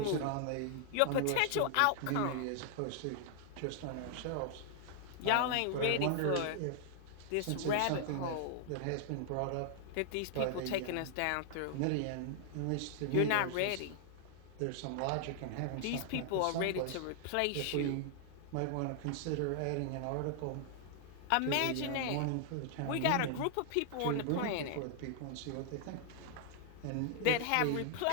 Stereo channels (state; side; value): different; both; correlation 0.00